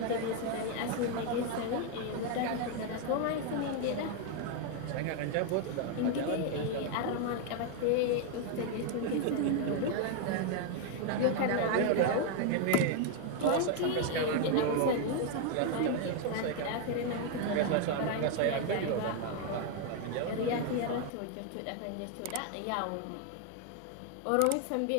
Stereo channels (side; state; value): both; different; correlation 0.00